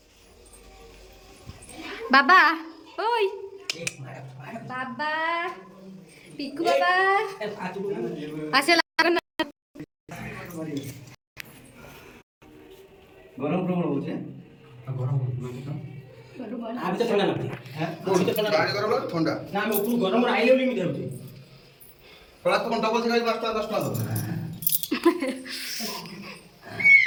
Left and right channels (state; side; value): identical; both; correlation 1.00